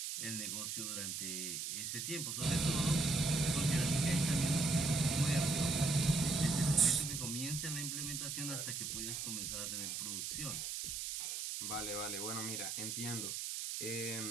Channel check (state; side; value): noise; right; hiss, 4 dB below the sound